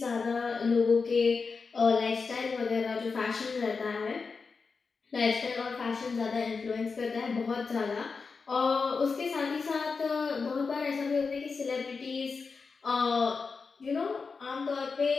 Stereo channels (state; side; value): quieter; right; 4.8 dB